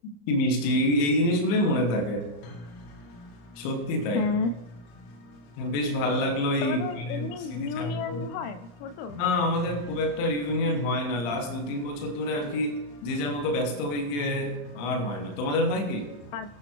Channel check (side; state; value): right; late; 35 ms